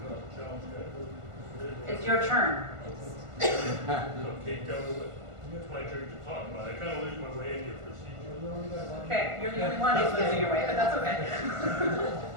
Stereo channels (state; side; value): late; left; 1.5 ms